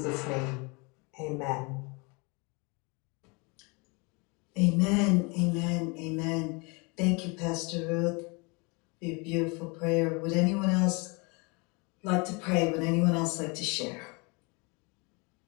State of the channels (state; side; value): quieter; right; 29.8 dB